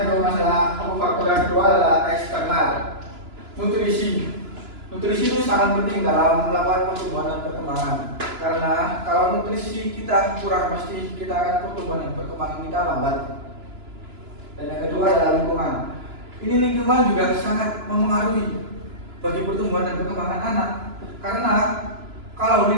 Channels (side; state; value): left; late; 2.9 ms